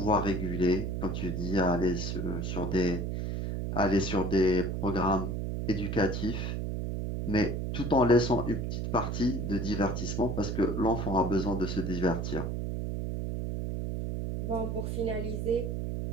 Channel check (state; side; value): noise; right; hum, 2 dB below the sound